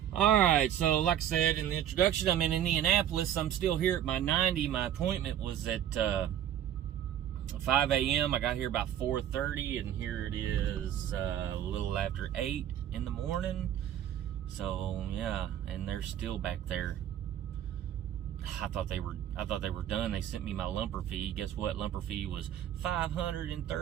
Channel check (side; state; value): left; quieter; 10.8 dB